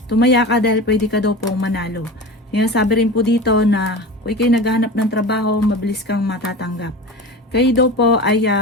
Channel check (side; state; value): both; normal; correlation 0.31